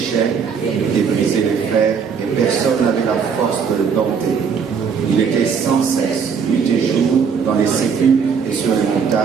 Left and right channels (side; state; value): left; quieter; 6.3 dB